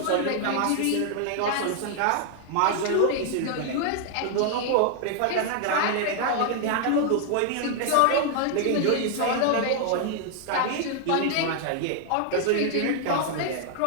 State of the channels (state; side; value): different; both; correlation 0.00